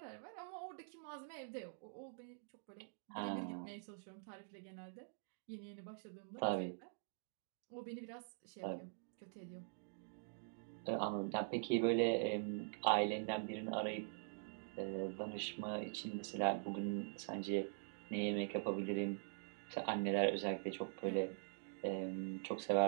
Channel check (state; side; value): silent; left; digital silence